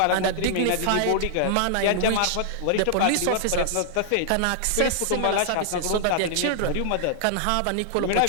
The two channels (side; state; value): both; different; correlation -0.01